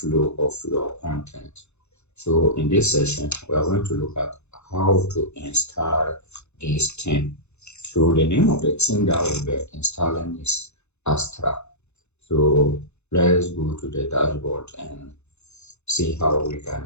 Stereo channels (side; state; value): right; late; 0.81 ms